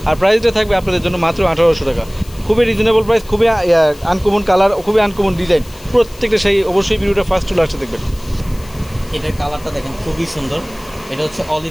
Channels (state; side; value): noise; left; hiss, 22 dB below the sound